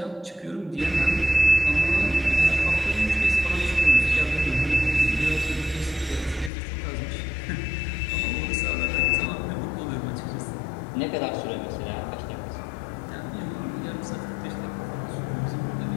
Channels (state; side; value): drops out; right; at 6.5 s